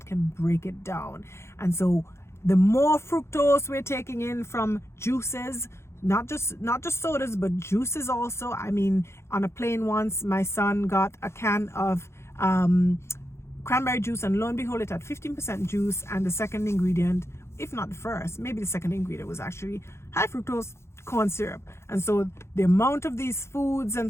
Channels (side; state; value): right; late; 0.13 ms